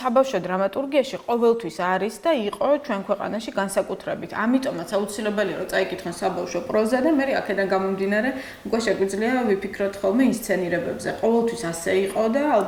დრამატურგიაში ყოველთვის არის და იყო ჩვენ ქვეყანაში განსაკუთრებით. ამიტომაც აუცილებელია რომ წაიკითხონ საბავშვო პროზა და მე აქედან გამომდინარე, უკვე შეგვიძლია ვიფიქროთ ხოლმე ინსცენირებებზე. ყოველთვის ასე იყო და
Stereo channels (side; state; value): both; identical; correlation 1.00